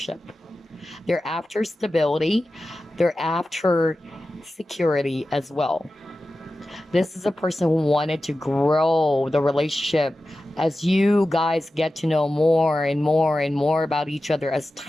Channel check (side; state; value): both; normal; correlation 0.94